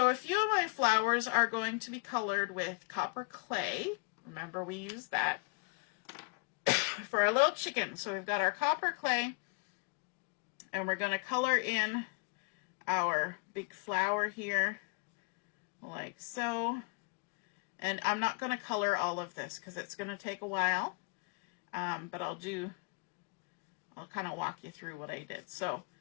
a few of my flowers are going to be colored with copper clay. Remember, we used that for our little chicken. So we've got our copper clay, and we're going to color in our big flower here like so. And I'm not going to color all of this because it's going to take a while. But I'll kind of walk you through what I did. So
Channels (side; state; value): right; quieter; 32.5 dB